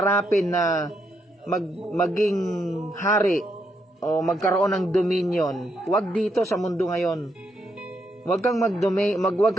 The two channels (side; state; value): both; normal; correlation 0.78